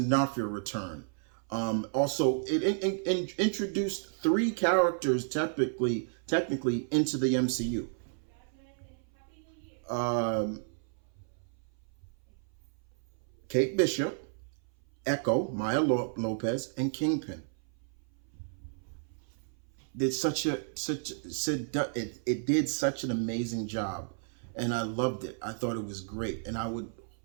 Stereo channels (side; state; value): left; silent; 56 dB below the other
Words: D'Onofrio return. Also, it introduced three characters technically into the MCU. Um, Kate Bishop, Echo, Maya Lopez, and Kingpin. Did it did such an amazing job, and I loved it. I thought it was great, and I would